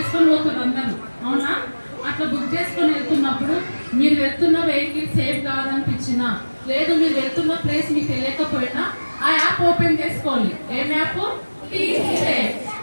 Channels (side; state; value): both; inverted; correlation -1.00